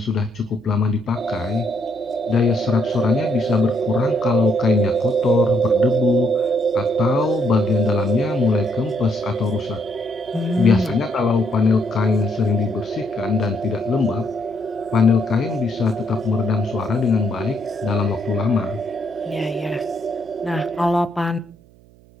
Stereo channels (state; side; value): noise; right; hum, 27 dB below the sound